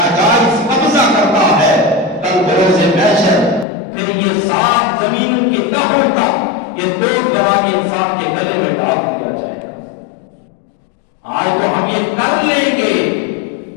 قبضہ کرتا ہے، کل بروز محشر پھر یہ 7 زمینوں کی تہوں تک یہ 2 بنا کے انسان کے گلے میں ڈال دیا جائے گا. آج تو ہم یہ کر لیں گے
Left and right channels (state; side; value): drops out; right; at 3.7 s